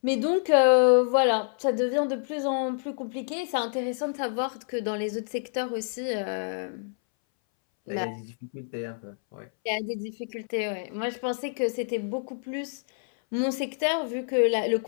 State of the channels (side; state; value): right; silent; 60 dB below the other